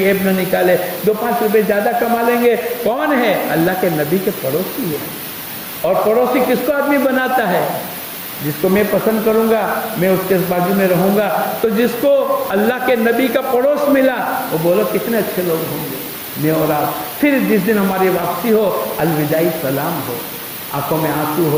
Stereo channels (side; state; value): both; identical; correlation 1.00